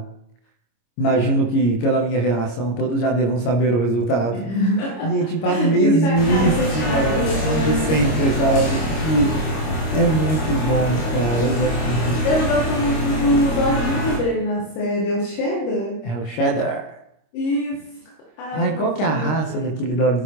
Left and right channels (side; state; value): right; late; 26 ms